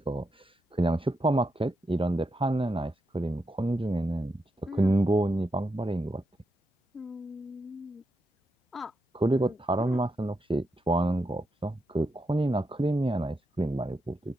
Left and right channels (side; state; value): both; normal; correlation 0.84